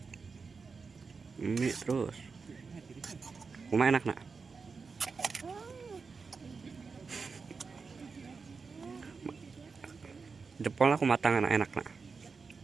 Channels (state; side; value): quieter; left; 4.9 dB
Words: Mie terus. Kumaha enak nak? Jempol aku matang enak nak.